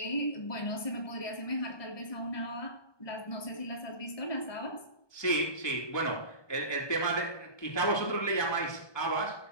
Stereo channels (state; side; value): late; right; 1.2 ms